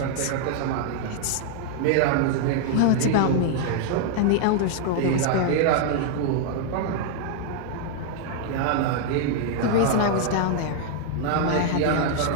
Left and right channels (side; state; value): both; different; correlation 0.00